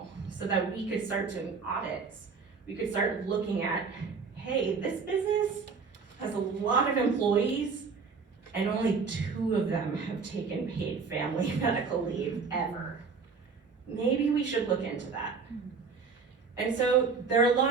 so that we could start doing audits. We could start looking at, hey, this business has a lot of employees and only 2 of them have taken paid family medical leave ever. Maybe we should look into that. And so there are a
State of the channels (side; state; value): left; quieter; 5.1 dB